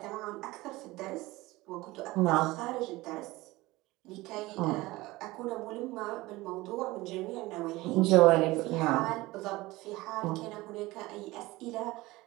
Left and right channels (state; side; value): quieter; left; 19.9 dB